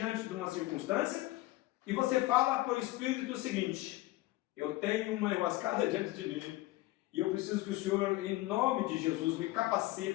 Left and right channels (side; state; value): right; quieter; 18.4 dB